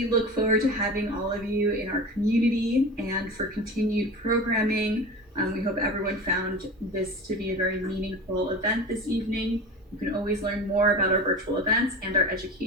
look forward to having all of you in our community and for continued programming. We hope everyone found this to be a very meaningful event this evening. You can always learn more about our virtual events and our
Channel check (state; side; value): normal; both; correlation 0.32